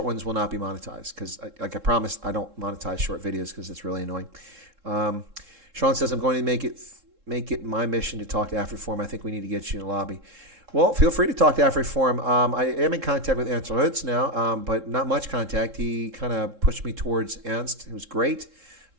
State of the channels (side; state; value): left; late; 3.7 ms